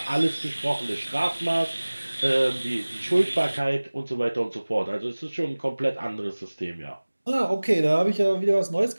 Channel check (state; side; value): inverted; both; correlation -1.00